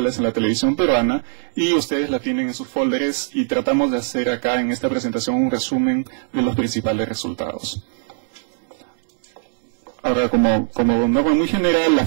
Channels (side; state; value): left; silent; 65 dB below the other